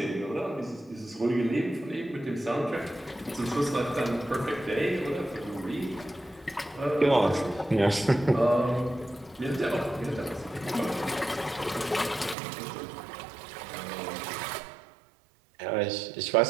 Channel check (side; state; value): left; drops out; at 12.4 s